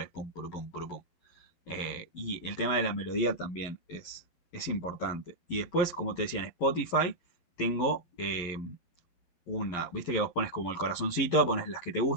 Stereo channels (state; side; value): late; right; 11 ms